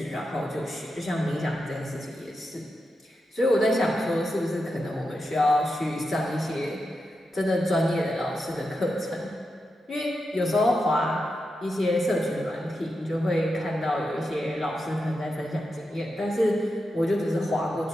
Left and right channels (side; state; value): both; normal; correlation 0.88